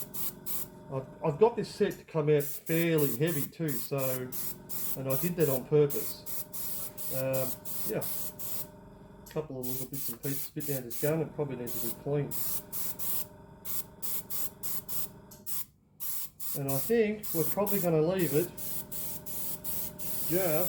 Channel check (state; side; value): identical; both; correlation 1.00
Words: I've got this set to come out fairly heavy too, so, and I did that on purpose. Yeah, a couple of little bits and pieces bit down this gun. It probably needs to be cleaned. And I think we're probably going to leave it